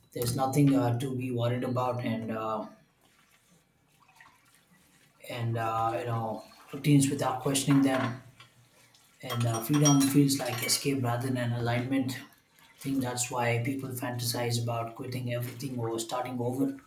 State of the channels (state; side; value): identical; both; correlation 1.00